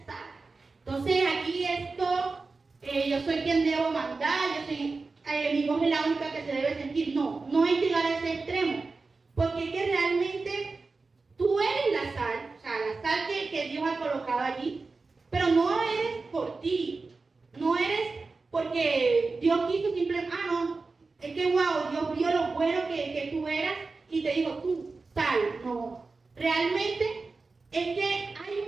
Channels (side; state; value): left; quieter; 4.0 dB